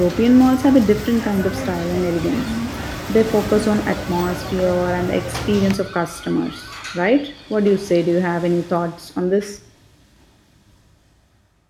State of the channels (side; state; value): both; identical; correlation 1.00